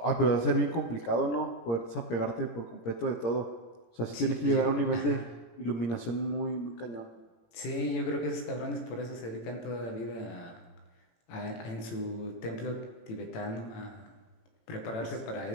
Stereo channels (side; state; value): right; late; 18 ms